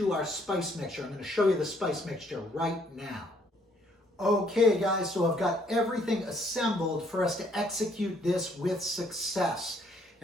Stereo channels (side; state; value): both; normal; correlation 0.66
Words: our spice mixture. I'm going to show you the spice mixture right now. Okay guys, so I've got everything assembled for us to execute this with success.